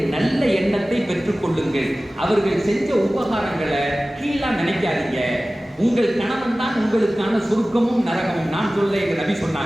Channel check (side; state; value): both; normal; correlation 0.97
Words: நல்ல எண்ணத்தை பெற்றுக் கொள்ளுங்கள். அவர்கள் செஞ்ச உபகாரங்களை கீழா நினைக்காதீங்க. உங்கள் கணவன் தான் உங்களுக்கான சொர்க்கமும் நரகமும். நான் சொல்ல எங்க நபி